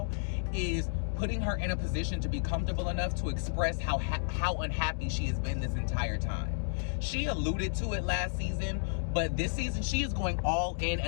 is putting her in a position to be comfortable enough to express how unhappy she has been this entire time. She alluded to it last season, but this season she is going all in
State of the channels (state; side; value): silent; right; digital silence